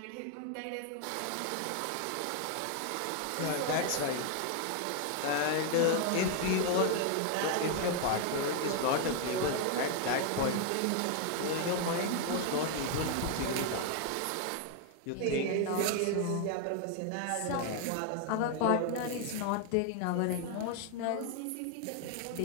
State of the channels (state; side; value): different; both; correlation 0.00